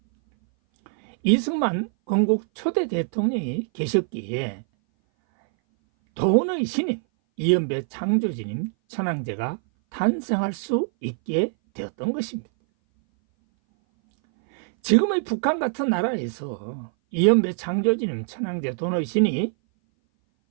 이승만 건국 초대 대통령이 계셨기에 돈의 신인 이연배 창조주님 천황제가 탄생할 수 있게 되었던 것입니다. 지금의 북한 같은 나라에서 이연배 창조주님 천황제 돈의 신이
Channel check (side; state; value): left; silent; 59 dB below the other